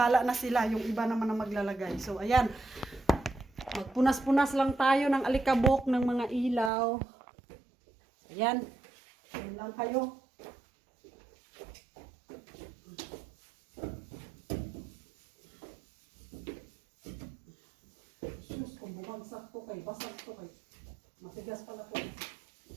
na sila, yung iba naman ang maglalagay. So ayan, magpunas-punas lang tayo ng alikabok ng mga ilaw. Ayan, ayan lang kayo. Kung bumagsak to kay, basag to kay. Matigas pala to.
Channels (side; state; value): left; drops out; at 6.7 s